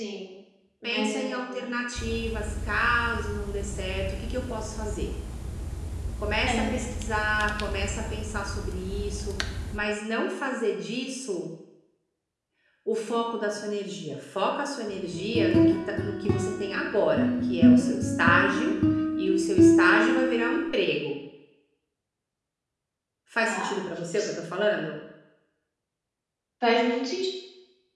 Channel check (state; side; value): identical; both; correlation 1.00